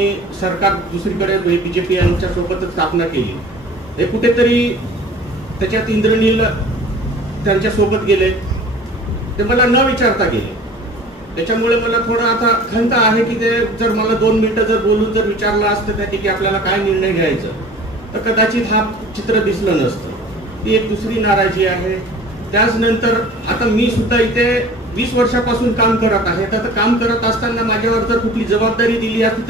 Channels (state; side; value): normal; both; correlation 0.44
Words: सरकार दुसरीकडे बीजेपी यांच्या सोबतच स्थापना केली. हे कुठेतरी त्याच्यात इंद्रनील त्यांच्या सोबत गेले, ते मला न विचारता गेले. त्याच्यामुळे मला थोडं आता खंत आहे की ते जर मला 2 मिनिटं जर बोलून जर विचारलं असतं त्या की आपल्याला काय निर्णय घ्यायचं तर कदाचित हा चित्र दिसलं नसतं. ती एक दुसरी नाराजी आहे. त्याचनंतर आता मी सुद्धा इथे 20 वर्षापासून काम करत आहे. तर काम करत असताना माझ्यावर जर कुठली जबाबदारी दिली असती